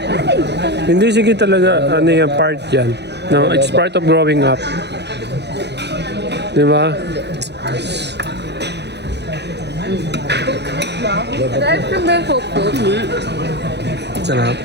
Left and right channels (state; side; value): late; left; 0.50 ms